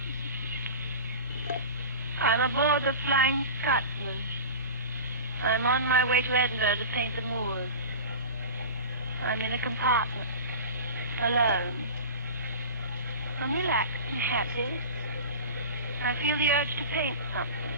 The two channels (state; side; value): inverted; both; correlation -0.32